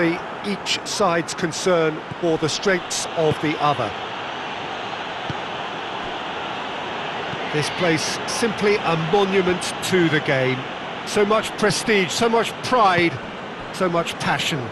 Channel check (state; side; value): identical; both; correlation 1.00